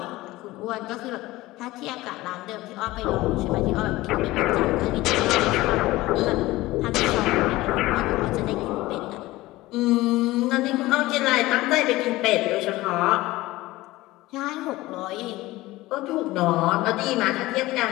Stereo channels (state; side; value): quieter; right; 18.5 dB